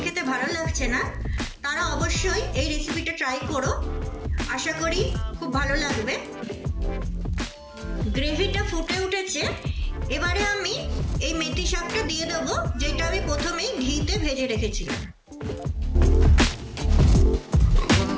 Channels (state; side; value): identical; both; correlation 1.00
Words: খেতে ভালো লাগছে না, তারা অবশ্যই এই রেসিপিটা ট্রাই করো। আশা করি খুব ভালো লাগবে। গ্রেভিটা ফুটে উঠেছে, এবারে আমি এই মেথি শাকটা দিয়ে দেবো, যেটা আমি প্রথমেই ঘিতে ভেজে রেখেছিলাম।